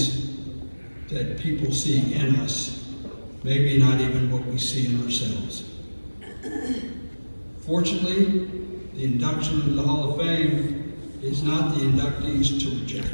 that people see in us, maybe not even what we see in ourselves. Fortunately, the induction into the Hall of Fame is not the inductees to reject.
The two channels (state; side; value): inverted; both; correlation -1.00